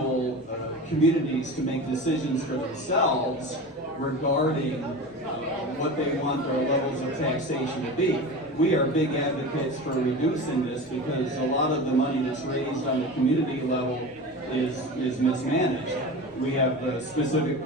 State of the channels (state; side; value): normal; both; correlation 0.30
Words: communities to make decisions for themselves regarding what they want their levels of taxation to be. We are big advocates for reducing this because a lot of the money that's raised on the community level is mismanaged. We have specific